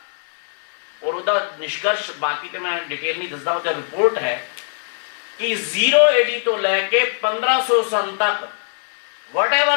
और उसका निष्कर्ष बाकी तो मैं डिटेल नहीं दसदा, उसका रिपोर्ट है कि 0 AD तो लैके 1500 सन तक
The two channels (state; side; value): silent; right; digital silence